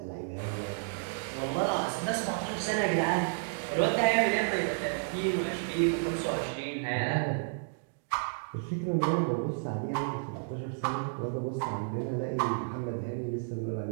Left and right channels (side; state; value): left; silent; digital silence